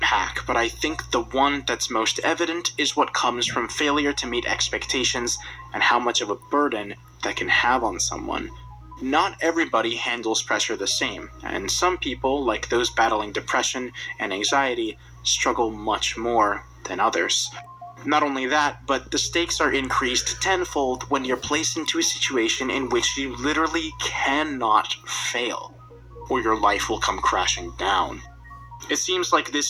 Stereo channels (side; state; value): both; identical; correlation 1.00